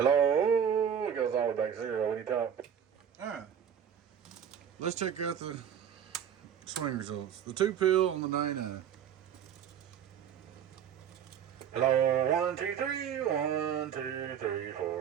it goes all the way back to 0 when you talk. Alright. Let's check out the swing results. The 2 pill on the 99. Hello, 1, 2, 3, 1, 2, 3,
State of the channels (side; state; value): left; quieter; 8.6 dB